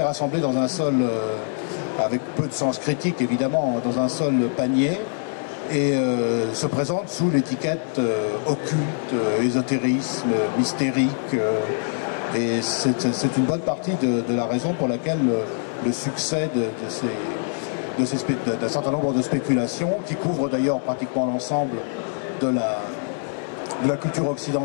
rassemblé dans un seul, avec peu de sens critique évidemment, dans un seul panier, et se présente sous l'étiquette occulte, ésotérisme, mystérique. Et c'est une bonne partie de la raison pour laquelle le succès d'un certain nombre de spéculations, qui couvrent d'ailleurs pratiquement l'ensemble de la culture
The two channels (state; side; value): silent; right; 63 dB below the other